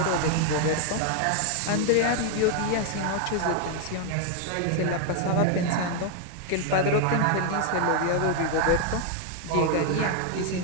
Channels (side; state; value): both; different; correlation 0.00